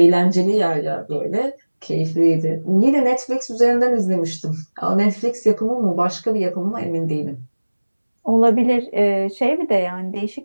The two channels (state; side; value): inverted; both; correlation -1.00